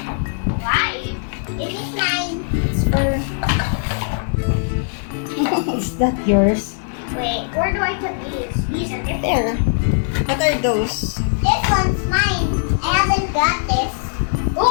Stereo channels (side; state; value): right; silent; digital silence